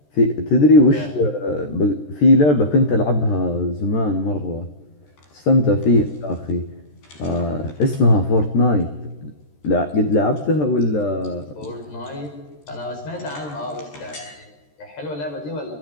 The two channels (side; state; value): right; late; 13 ms